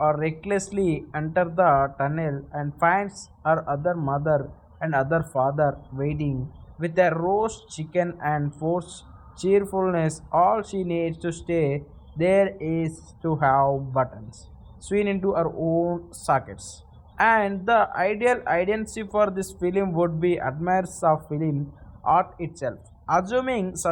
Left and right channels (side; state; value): both; identical; correlation 1.00